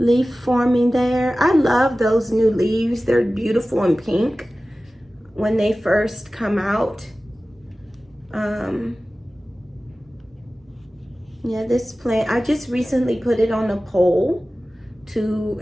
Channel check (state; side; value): normal; both; correlation 0.96